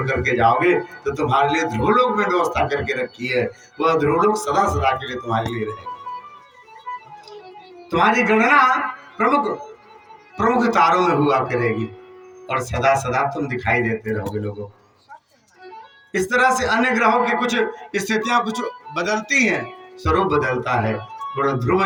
करके जाओगे तो तुम्हारे लिए ध्रुवलोक में व्यवस्था करके रखी है। वह ध्रुवलोक सदा सदा के लिए तुम्हारे लिए रहेगा। तुम्हारी गणना प्रमुख तारों में हुआ करेगी, और सदा सदा तुम दिखाई देते रहोगे लोगों को। इस तरह से अन्य ग्रहों की कुछ स्थितियां कुछ बदलती हैं, स्वरूप बदलता है। बड़ा ध्रुव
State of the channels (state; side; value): identical; both; correlation 1.00